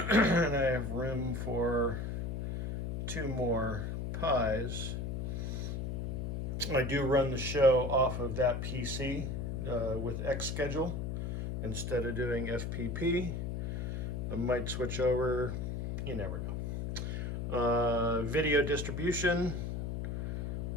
I have room for 2 more Pis. I do run the show off of that PC with Xschedule instead of doing FPP. I might switch over, you never know. Video distribution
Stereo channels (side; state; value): left; noise; hum, 2 dB below the sound